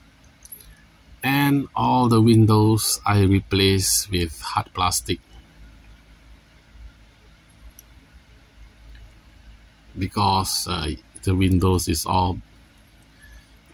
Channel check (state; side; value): identical; both; correlation 1.00